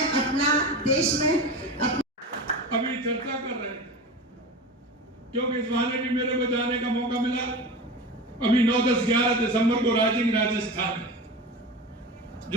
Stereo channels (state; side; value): normal; both; correlation 0.29